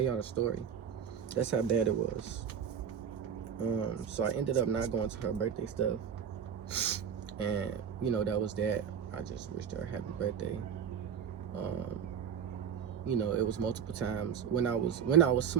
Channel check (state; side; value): quieter; left; 7.9 dB